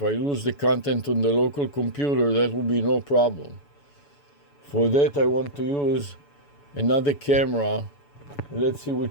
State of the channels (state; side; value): late; right; 7.0 ms